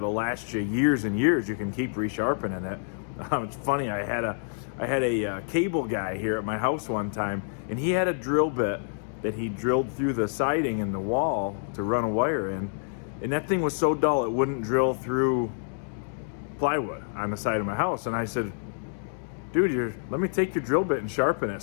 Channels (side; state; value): right; silent; digital silence